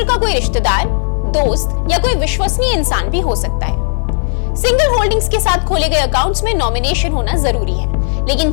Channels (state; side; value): silent; right; digital silence